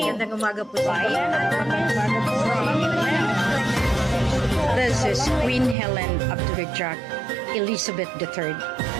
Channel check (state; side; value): drops out; left; at 5.8 s